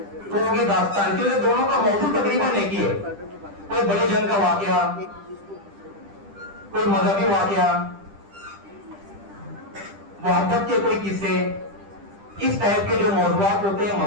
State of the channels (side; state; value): left; late; 10 ms